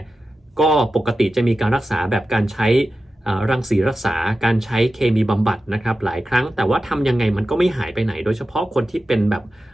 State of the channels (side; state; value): both; normal; correlation 0.93